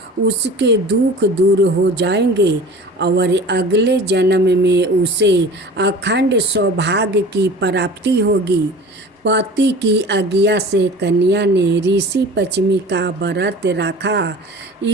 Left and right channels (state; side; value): normal; both; correlation 0.40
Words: उसके दुख दूर हो जाएंगे और अगले जन्म में उसे अखंड सौभाग्य की प्राप्ति होगी। पति की आज्ञा से कन्या ने ऋषि पश्चिमी का व्रत रखा।